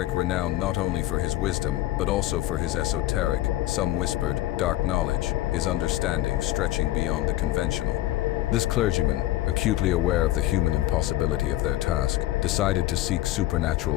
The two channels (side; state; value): right; quieter; 15.5 dB